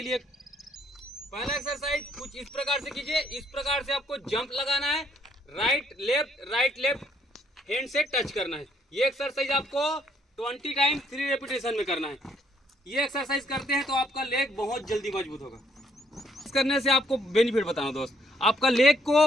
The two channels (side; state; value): both; normal; correlation 0.68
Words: लिए पहला एक्सरसाइज कुछ इस प्रकार से कीजिए। इस प्रकार से आपको जंप लगाना है, राइट लेफ्ट हैंड से टच करना है। ये एक्सरसाइज आपको 20 टाइम 3 रेपिटेशन में करना है। ये एक्सरसाइज करते हैं तो आपका लेग बहुत जल्दी मजबूत होगा। इस करने से आपको बेनिफिट बताऊं दोस्त, आपका लेग